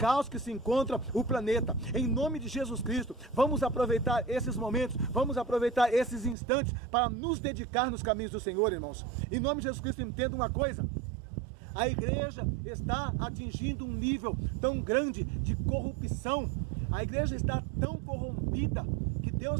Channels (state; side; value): drops out; left; at 6.4 s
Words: que se encontra o planeta. Em nome de Jesus Cristo, vamos aproveitar esses momentos, vamos aproveitar esses instantes para nos dedicar nos caminhos do Senhor, irmãos. Em nome de Jesus Cristo, entenda uma coisa: a igreja está atingindo um nível tão grande de corrupção, a igreja está tão corrompida, que Deus